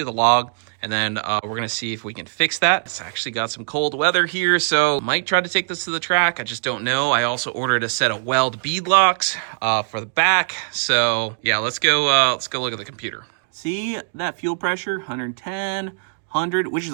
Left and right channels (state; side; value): silent; left; digital silence